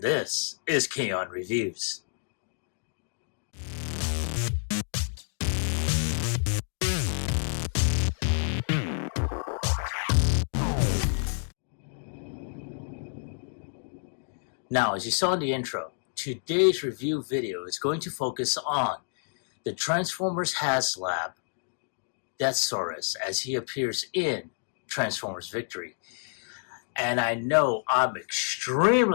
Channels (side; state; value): right; silent; digital silence